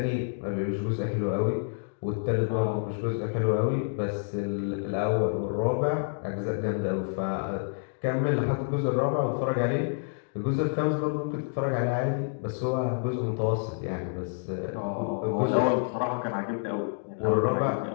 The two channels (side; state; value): right; silent; digital silence